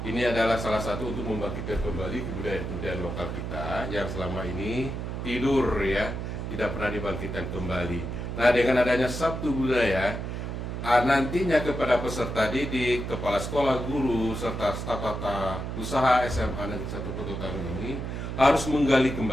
ini adalah salah satu untuk membangkitkan kembali kebudayaan lokal kita yang selama ini tidur ya, tidak pernah dibangkitkan kembali. Nah, dengan adanya Sabtu Budaya, nantinya kepada peserta didik, kepala sekolah, guru, serta staf tata usaha SMA Negeri 1 Pototano ini harus menggali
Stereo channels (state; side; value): noise; right; hum, 5 dB below the sound